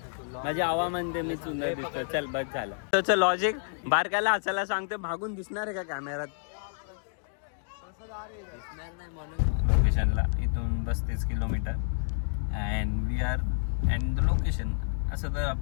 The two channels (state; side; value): silent; right; digital silence